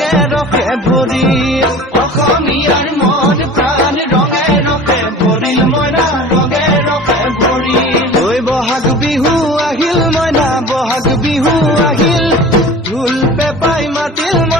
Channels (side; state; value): both; normal; correlation 0.40